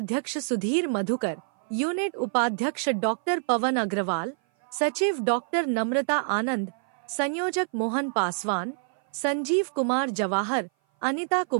सुधीर मधुकर, यूनिट उपाध्यक्ष डॉक्टर पवन अग्रवाल, सचिव डॉक्टर नम्रता आनंद, संयोजक मोहन पासवान, संजीव कुमार जवाहर, अनिता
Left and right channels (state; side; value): silent; left; 57 dB below the other